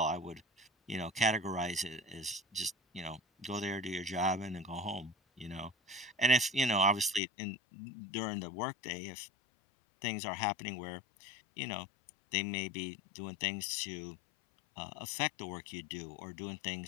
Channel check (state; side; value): drops out; right; at 7.2 s